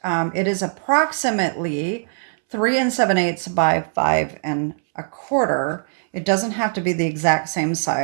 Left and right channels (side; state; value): left; silent; 65 dB below the other